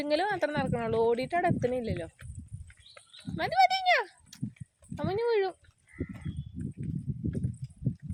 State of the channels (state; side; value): identical; both; correlation 1.00